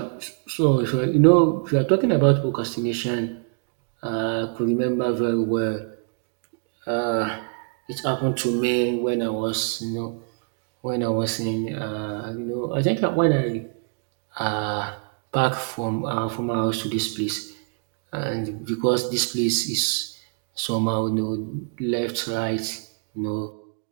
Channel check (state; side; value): silent; left; digital silence